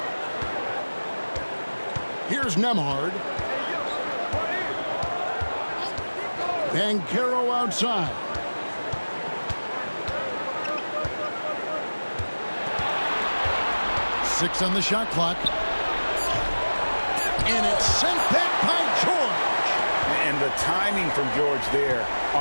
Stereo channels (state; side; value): inverted; both; correlation -1.00